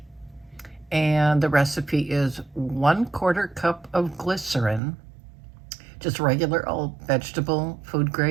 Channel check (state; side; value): drops out; left; at 4.8 s